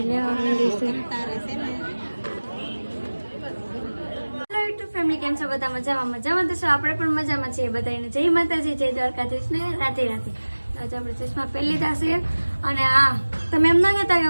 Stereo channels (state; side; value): inverted; both; correlation -1.00